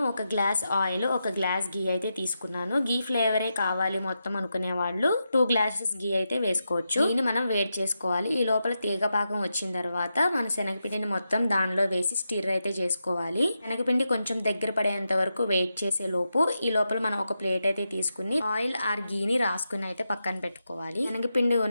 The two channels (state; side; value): inverted; both; correlation -0.87